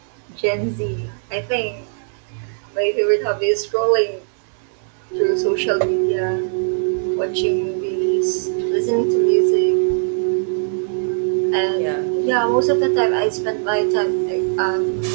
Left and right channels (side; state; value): left; silent; digital silence